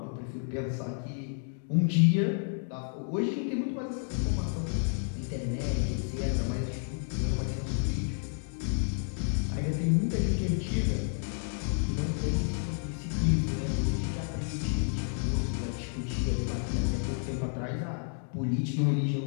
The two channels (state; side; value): silent; right; 57 dB below the other